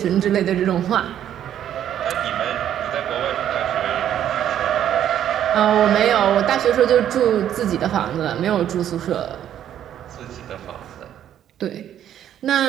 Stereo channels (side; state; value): left; quieter; 10.6 dB